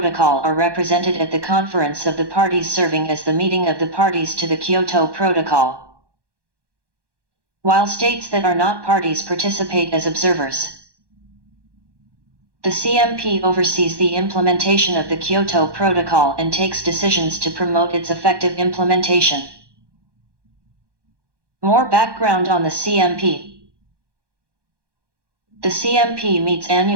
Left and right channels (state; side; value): late; left; 1.2 ms